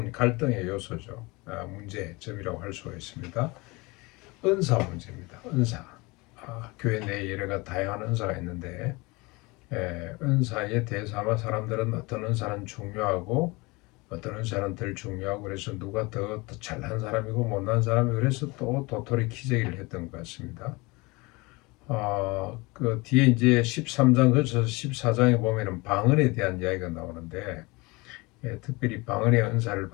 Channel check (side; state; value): right; quieter; 24.8 dB